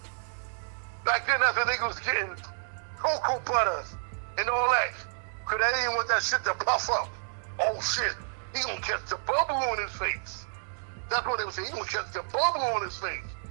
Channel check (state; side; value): silent; left; digital silence